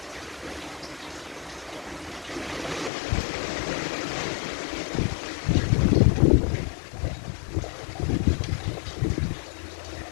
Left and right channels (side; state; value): right; drops out; at 2.9 s